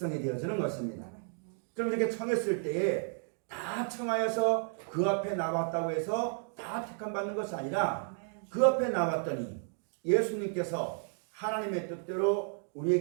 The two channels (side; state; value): left; silent; 56 dB below the other